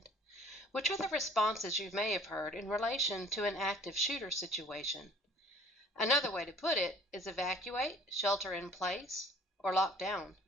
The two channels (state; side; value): normal; both; correlation 0.53